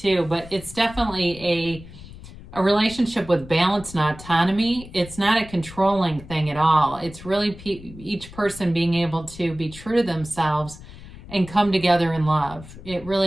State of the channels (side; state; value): left; noise; rumble, 16 dB below the sound